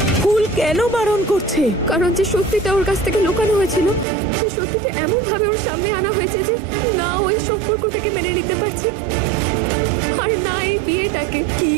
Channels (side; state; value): left; drops out; at 4.0 s